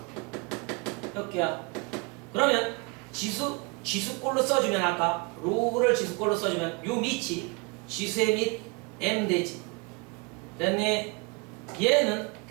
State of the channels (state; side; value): quieter; left; 29.8 dB